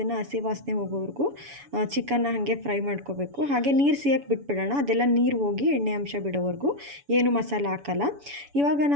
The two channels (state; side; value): late; left; 7.1 ms